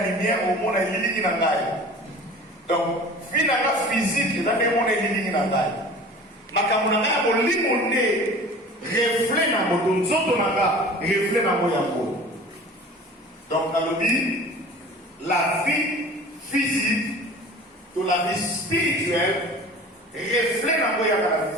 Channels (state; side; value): normal; both; correlation 0.42